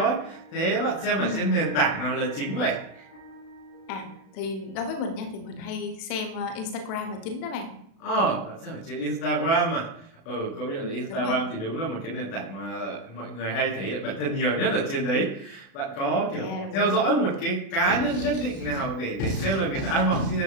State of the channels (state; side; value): late; right; 36 ms